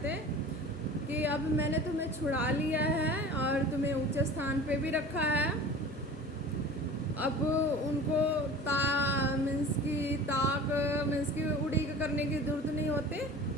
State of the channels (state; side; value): normal; both; correlation 0.39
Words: कि अब मैंने तुम्हें छुड़ा लिया है और तुम्हें ऊंचे स्थान पे भी रखा है। अब उनको मीन्स की उड़ीक करने की जरूरत नहीं होती।